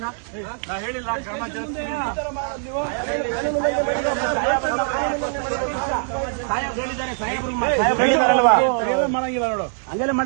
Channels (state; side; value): silent; left; 60 dB below the other